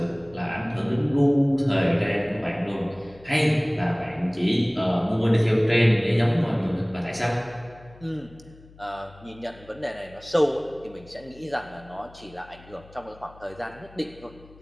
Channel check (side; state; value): left; noise; hum, 23 dB below the sound